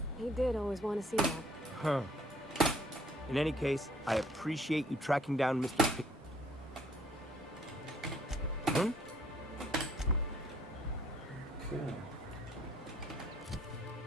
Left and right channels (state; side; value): normal; both; correlation 0.62